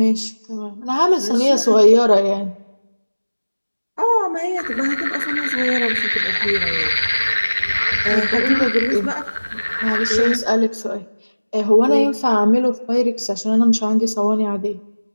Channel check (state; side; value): inverted; both; correlation -1.00